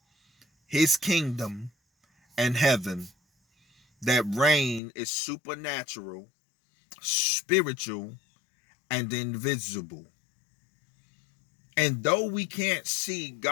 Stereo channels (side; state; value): right; drops out; at 4.8 s